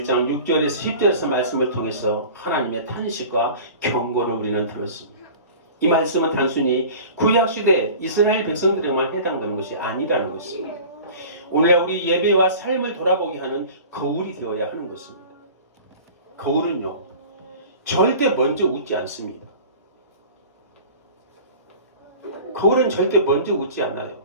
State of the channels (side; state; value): both; inverted; correlation -0.40